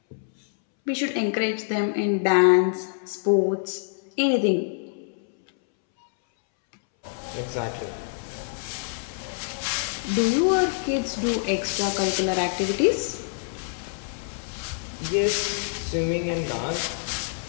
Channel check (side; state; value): right; silent; 61 dB below the other